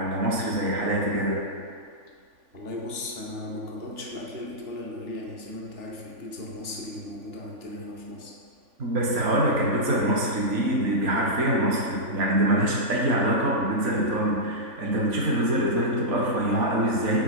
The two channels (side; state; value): left; late; 3.5 ms